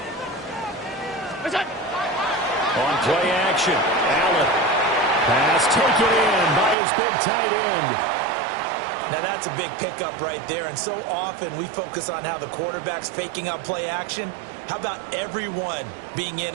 On play action, Allen. Pass taken in by his big tight end. Now that's a big pickup right there, and so often we focus on how the quarterback's faking out play action. How about everyone being in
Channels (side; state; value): left; drops out; at 6.8 s